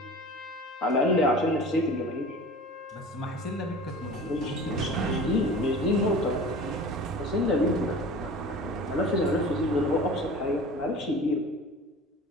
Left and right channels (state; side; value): normal; both; correlation 0.39